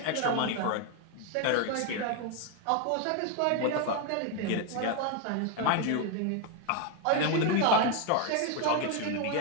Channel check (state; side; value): different; both; correlation 0.01